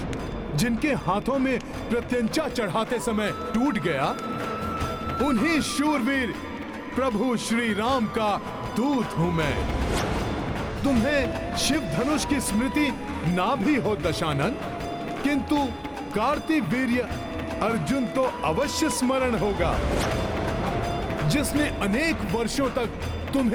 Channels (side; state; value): both; identical; correlation 1.00